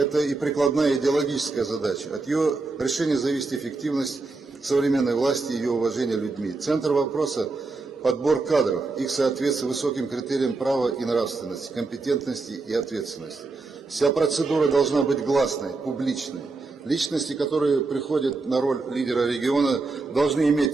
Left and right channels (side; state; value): left; quieter; 3.7 dB